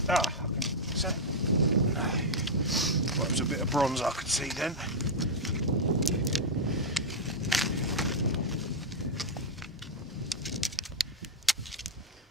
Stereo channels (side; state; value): both; normal; correlation -0.01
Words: Ah, is that? Well, it was a bit of bronze I could see then.